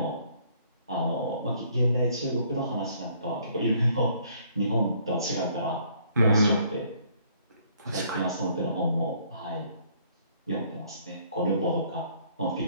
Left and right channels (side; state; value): both; inverted; correlation -0.63